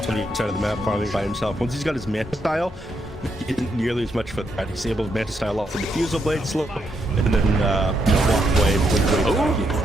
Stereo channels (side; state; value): both; normal; correlation 0.78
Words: on the inside of the map, farming by himself. Once he's got his Manta Style, he isn't nearly as much for that. He's able to Manta Style off the Diffusal Blade slow, and then walk away.